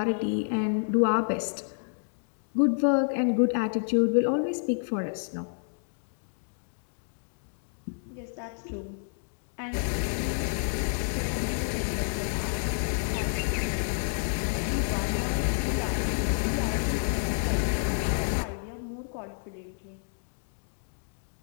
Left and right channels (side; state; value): right; silent; digital silence